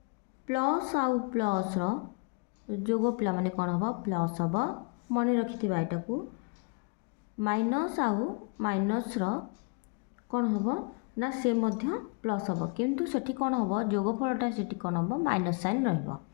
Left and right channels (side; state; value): right; quieter; 33.6 dB